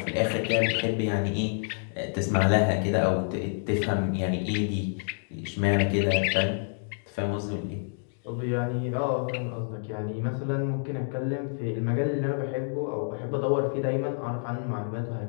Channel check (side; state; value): right; silent; digital silence